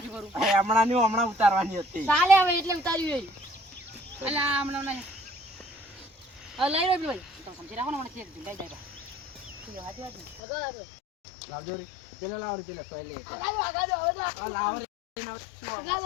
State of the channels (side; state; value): right; drops out; at 10.4 s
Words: કરું હમણાં ઉતારવાની હતી ચાલે હવે એટલે ઉતાર્યું એટલે આ હમણાં નહીં હવે લઈ લો ભાઈ તમે સમજી રાખો ને મને ખેર લઈ જાય લાવજો રે પેલા લાવો રે પેલા સોય લે આગાજો આ લાવો રે